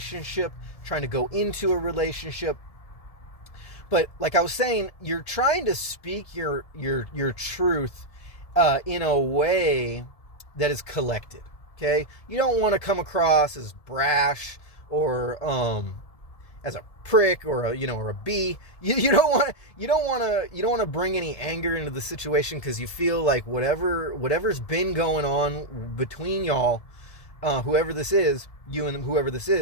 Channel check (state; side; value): late; right; 1.7 ms